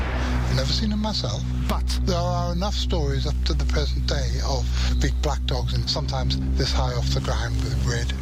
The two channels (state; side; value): identical; both; correlation 1.00